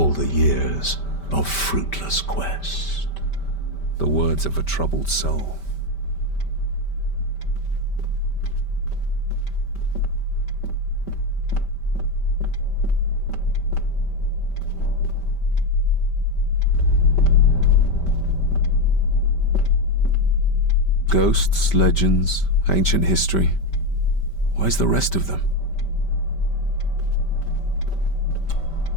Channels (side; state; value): right; late; 5.1 ms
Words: the years of fruitless quest. The words of a troubled soul. Ghosts, legends, ancient history. Where's the rest of them?